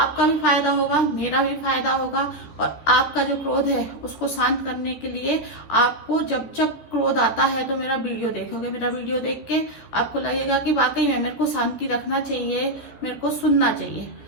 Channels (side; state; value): right; late; 14 ms